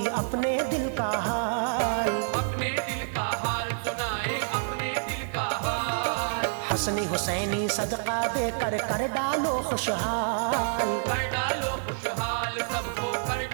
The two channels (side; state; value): left; silent; 59 dB below the other